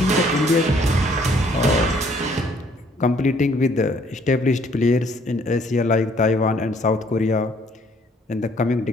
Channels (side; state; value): both; normal; correlation 0.63